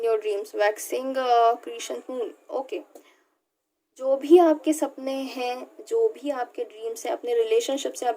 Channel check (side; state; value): both; identical; correlation 1.00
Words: your dreams, waxing creation moon. Okay, जो भी आपके सपने हैं, जो भी आपके ड्रीम्स हैं, अपने रिलेशनशिप से